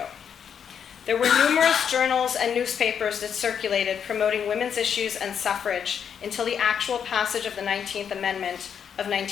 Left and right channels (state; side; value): quieter; right; 7.7 dB